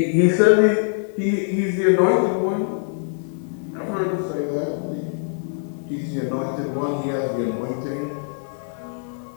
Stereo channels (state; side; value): silent; right; digital silence